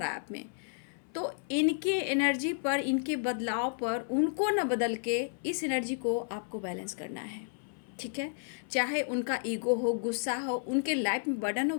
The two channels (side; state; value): right; silent; 56 dB below the other